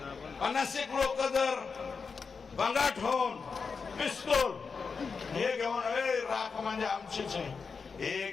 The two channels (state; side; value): quieter; right; 5.2 dB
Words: 50 लोक जर बंगाट होऊन पिस्तूल हे घेऊन, राख म्हणजे आमचीच आहे.